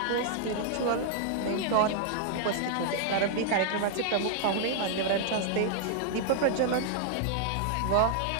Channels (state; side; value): different; both; correlation -0.01